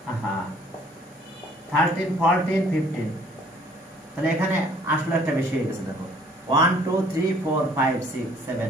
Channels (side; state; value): both; normal; correlation 0.58